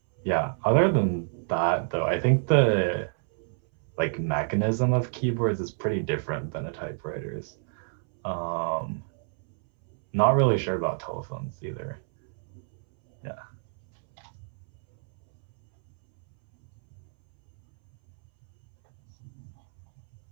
yeah, other than that though, I think the like mechanism of keyboards is pretty different than a typewriter's. Um, not really sure about telephones either. Yeah.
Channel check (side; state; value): left; silent; 60 dB below the other